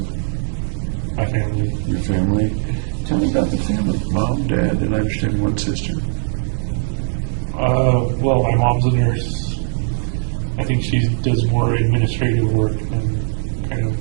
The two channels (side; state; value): left; silent; digital silence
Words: My family. Your family? Tell me about the family. Mom, Dad, and I understand one sister. Well, my mom's a nurse. I think she does more administrative work than kind